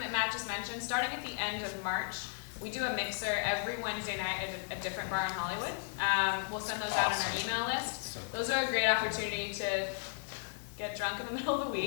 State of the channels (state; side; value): silent; right; digital silence